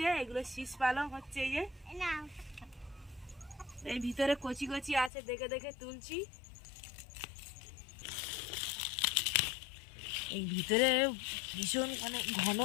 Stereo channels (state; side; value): drops out; right; at 5.1 s